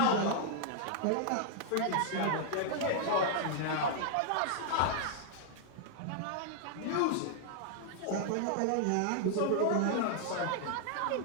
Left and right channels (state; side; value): different; both; correlation -0.01